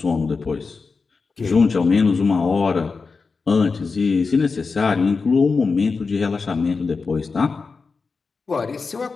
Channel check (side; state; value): right; quieter; 4.6 dB